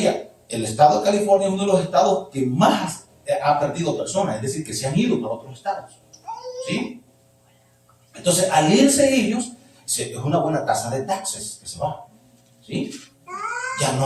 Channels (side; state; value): both; identical; correlation 1.00